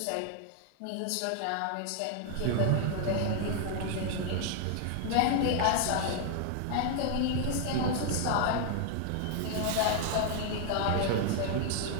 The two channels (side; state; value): both; different; correlation 0.00